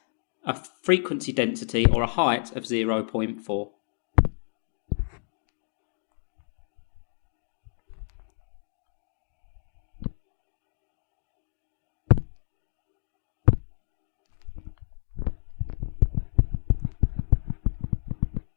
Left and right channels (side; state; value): right; silent; 58 dB below the other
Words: a frequency density or a height of 0.4.